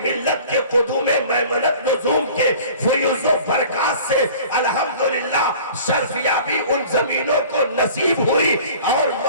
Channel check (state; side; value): inverted; both; correlation -0.45